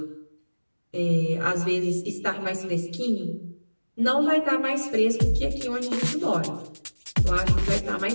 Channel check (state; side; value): inverted; both; correlation -1.00